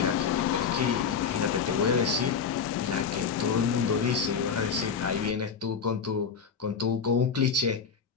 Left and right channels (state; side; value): quieter; right; 6.2 dB